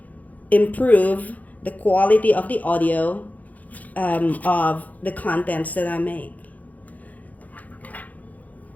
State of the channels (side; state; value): right; late; 0.078 ms